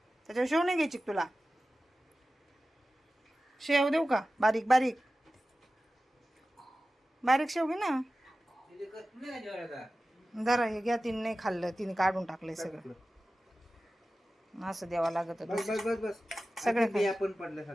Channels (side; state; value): both; normal; correlation 0.95